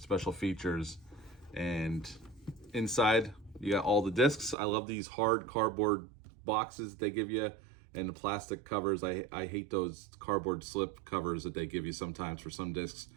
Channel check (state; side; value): drops out; left; at 4.5 s